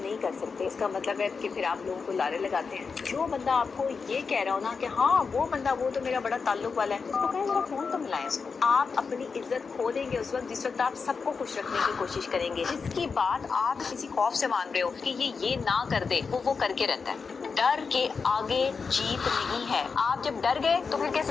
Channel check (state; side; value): quieter; right; 5.1 dB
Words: نہیں کر سکتے۔ اس کا مطلب ہے کہ پھر آپ لوگوں کو لارے لگاتے ہیں۔ جو بندہ آپ کو یہ کہہ رہا ہو نا کہ ہاں وہ بندہ وہ تو میرا بڑا تعلق والا ہے، اس کو کہیں ذرا فون تو ملائیں اس کو۔ آپ اپنی عزت کھو دیں گے اس وقت جس وقت آپ سب کو خوش رکھنے کی کوشش کریں گے۔ جس کی بات آپ کسی خوف سے مان رہے ہو کہ یہ نہ کر دے، وہ کر کے رہتا ہے۔ ڈر کے آگے جیت نہیں ہے۔ آپ جب ڈر گئے تو پھر